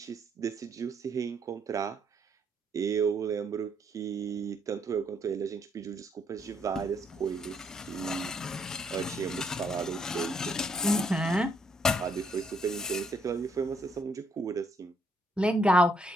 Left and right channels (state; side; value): normal; both; correlation 0.71